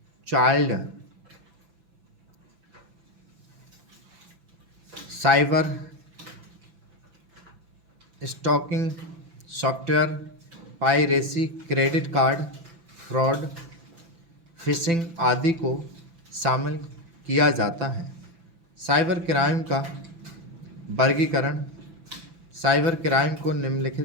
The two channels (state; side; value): late; left; 5.9 ms